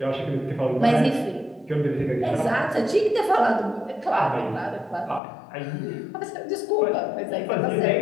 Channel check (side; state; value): right; drops out; at 5.2 s